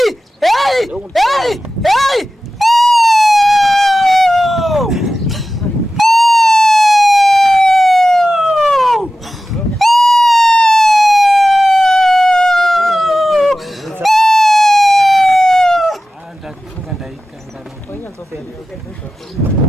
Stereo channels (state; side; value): normal; both; correlation 0.94